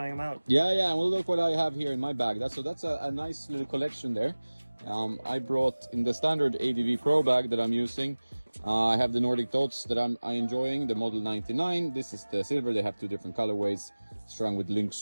them out. Yeah. And we'll look what I have here in my bag. That's a nice little collection there. I brought in the standard ADV Pro bag that I'm using. I have the Nordic Dots that I'm enjoying, the Model 99. This is the silver. They have two different colorways, strung with Lynx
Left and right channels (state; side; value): inverted; both; correlation -1.00